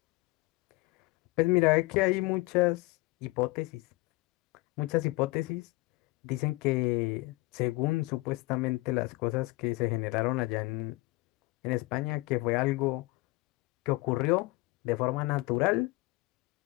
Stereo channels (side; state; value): right; quieter; 22.7 dB